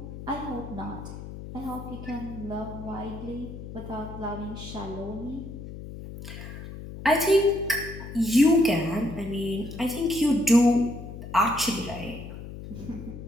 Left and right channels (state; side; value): noise; left; hum, 11 dB below the sound